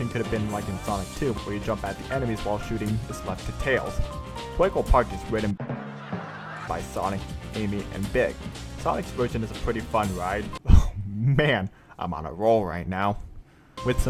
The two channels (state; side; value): identical; both; correlation 1.00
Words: could have been like in Sonic 2, where you jump at the enemies while shooting is left to Tails. Twinkle Park is written by Sonic, Amy, and Big. Sonic's version is a pretty fun ride, Man, I'm on a roll right now. With